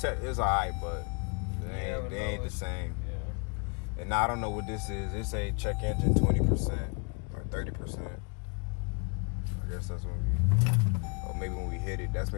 alright, but they ain't the same. Yeah. And I don't know what this is. It say check engine 20% or 30%. I guess that's when or maybe when we hit it, that's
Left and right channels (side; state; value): right; quieter; 33.9 dB